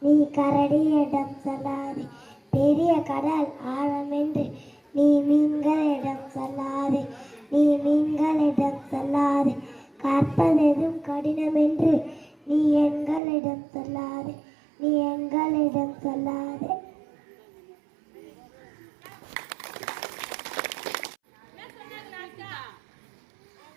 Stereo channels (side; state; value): left; drops out; at 13.2 s